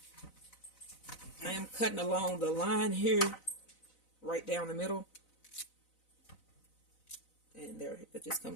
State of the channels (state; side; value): late; right; 4.0 ms